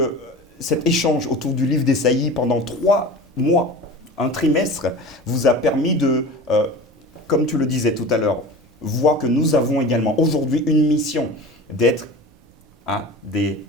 cet échange autour du livre d'Ésaïe pendant 3 mois, un trimestre, vous a permis de, comme tu le disais tout à l'heure, voir que nous avons également aujourd'hui une mission d'être des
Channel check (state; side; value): normal; both; correlation 0.35